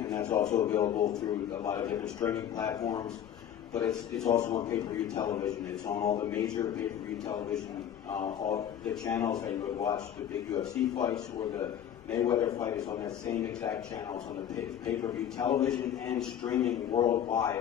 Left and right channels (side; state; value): right; quieter; 9.8 dB